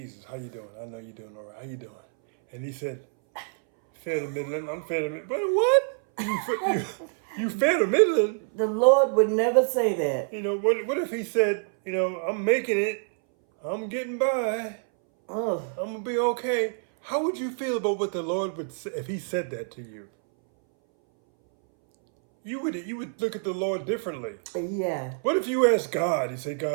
how you doing? I know you're doing all right. How you doing? And he said, fair to middling. I'm fair to middling. But what? You fair to middling? The Lord would never say that. What if he said, I'm making it. I'm getting by. Oh. I'm going to be okay. How would you feel about what the Lord would say if he said that to you? You would look at the Lord differently. Yeah. What if you asked God? You say,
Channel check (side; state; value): left; silent; 60 dB below the other